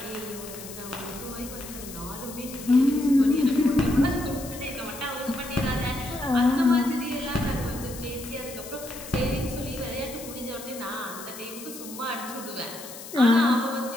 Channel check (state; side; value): noise; left; hiss, 13 dB below the sound